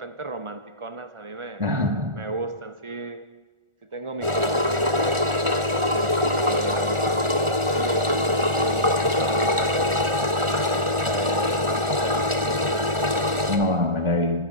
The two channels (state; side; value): late; left; 1.4 ms